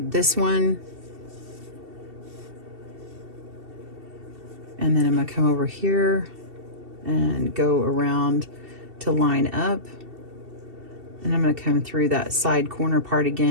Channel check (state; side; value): late; left; 2.7 ms